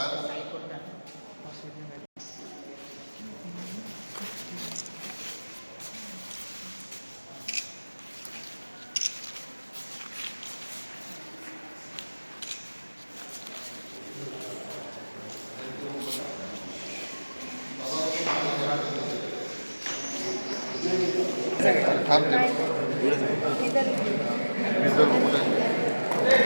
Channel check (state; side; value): inverted; both; correlation -1.00